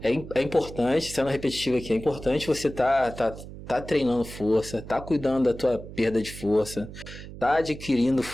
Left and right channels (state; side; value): noise; right; hum, 13 dB below the sound